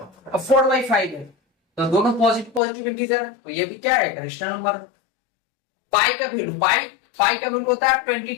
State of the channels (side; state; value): right; drops out; at 2.6 s